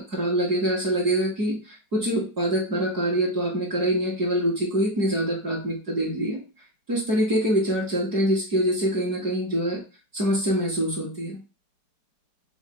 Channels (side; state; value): left; late; 4.7 ms